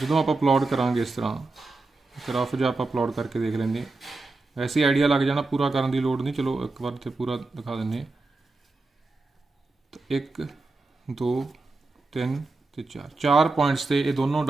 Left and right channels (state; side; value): quieter; left; 3.4 dB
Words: आप प्लॉट करांगे इस तरह ग्राफ जो आप प्लॉट करके देख लेंगे वैसे आइडिया लग जाना पूरा करने की लोड़ नहीं। चलो एक बार तो पूरा दिखा दें तो 1 2 3 तो 4 पॉइंट्स से ये दोनों